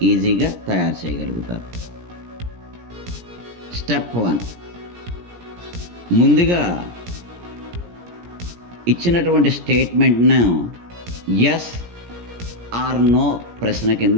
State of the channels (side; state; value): left; late; 17 ms